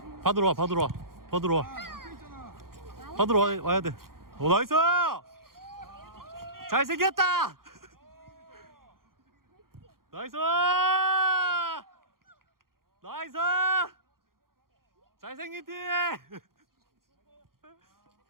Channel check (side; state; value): left; late; 0.92 ms